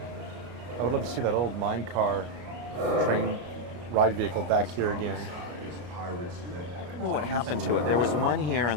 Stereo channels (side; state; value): left; late; 33 ms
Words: I would love to see that old mine car train ride vehicle back here again. I don't know what happened to it. There was one here, and